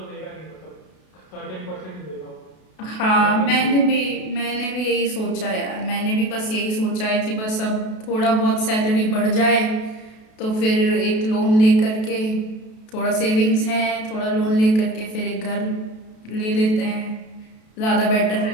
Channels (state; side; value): late; right; 32 ms